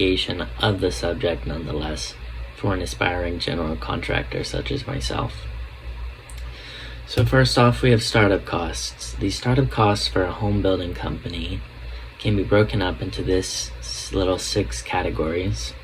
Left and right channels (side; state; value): both; identical; correlation 1.00